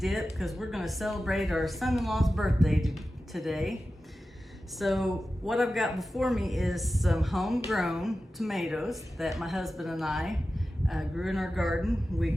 because we're going to celebrate our son-in-law's birthday today. So what I've got before me is some homegrown tomatoes that my husband and I grew in our garden. We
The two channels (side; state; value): both; normal; correlation 0.94